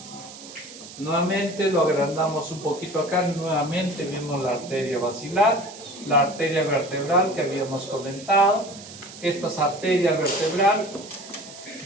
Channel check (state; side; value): noise; right; hiss, 16 dB below the sound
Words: Nuevamente lo agrandamos un poquito acá, nuevamente vemos la arteria basilar, la arteria vertebral que habíamos comentado. Esta arteria vertebral